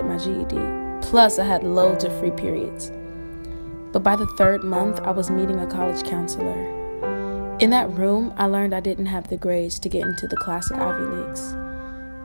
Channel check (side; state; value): both; inverted; correlation -1.00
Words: my GED. Plus, I had loads of free periods. But by the third month, I was meeting a college counselor. In that room, I learned I didn't have the grades to get into the classic Ivy Leagues.